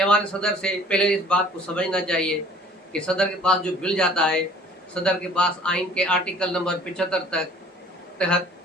सदर से पहले इस बात को समझना चाहिए कि सदर के पास जो बिल जाता है, सदर के पास आइन के आर्टिकल नंबर 75 तहत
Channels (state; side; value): normal; both; correlation 0.52